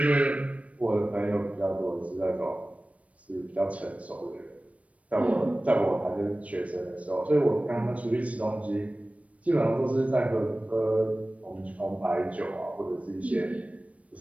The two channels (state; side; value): late; left; 0.065 ms